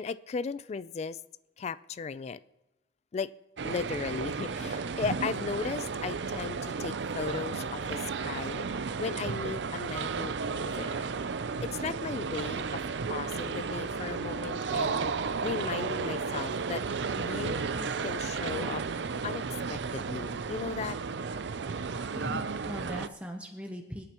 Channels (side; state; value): both; normal; correlation 0.06